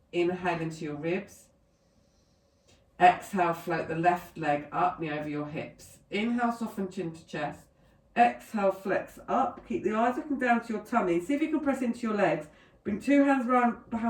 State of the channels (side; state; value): both; identical; correlation 1.00